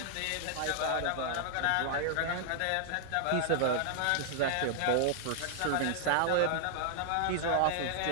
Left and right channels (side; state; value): both; different; correlation -0.01